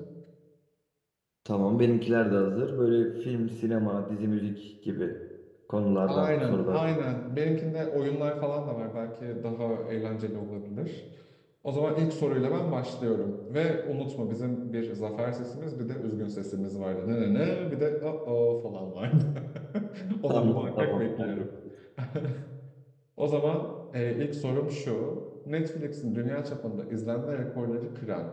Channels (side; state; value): both; identical; correlation 1.00